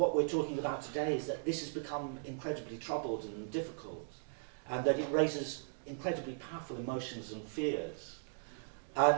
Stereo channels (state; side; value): silent; left; digital silence